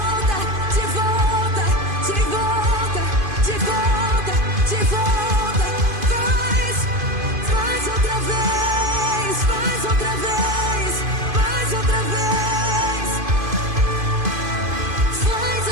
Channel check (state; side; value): late; left; 2.5 ms